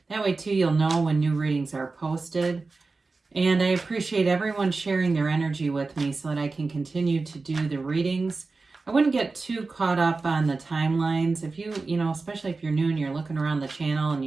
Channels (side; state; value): left; quieter; 3.9 dB